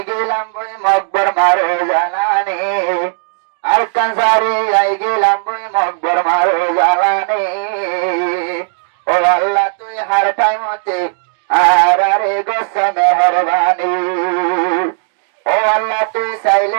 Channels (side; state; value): left; silent; digital silence